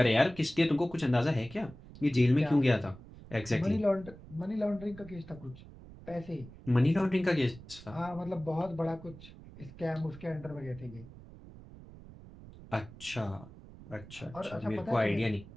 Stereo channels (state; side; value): noise; right; rumble, 18 dB below the sound